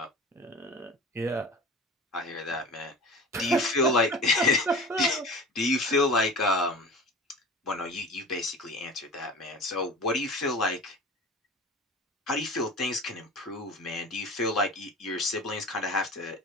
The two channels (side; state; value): both; normal; correlation 0.36